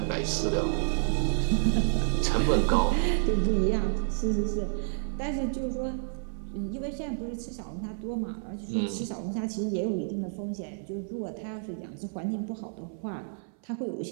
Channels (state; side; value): silent; left; 58 dB below the other